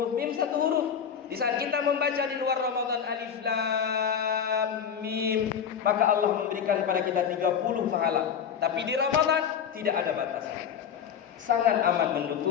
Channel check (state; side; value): quieter; right; 7.7 dB